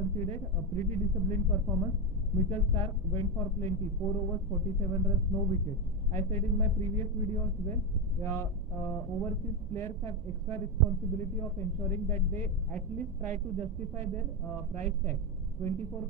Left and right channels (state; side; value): normal; both; correlation 0.11